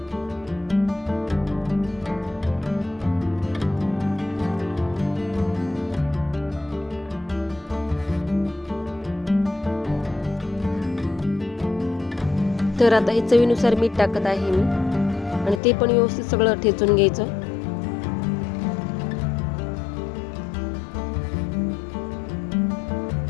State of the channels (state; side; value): drops out; right; at 15.6 s